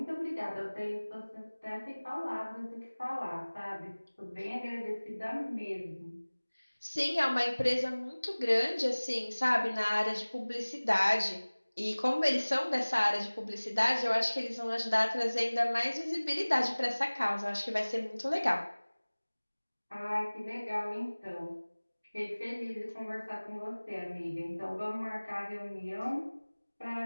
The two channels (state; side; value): inverted; both; correlation -1.00